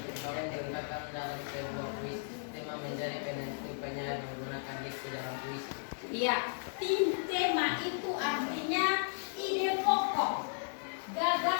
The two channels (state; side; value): silent; right; digital silence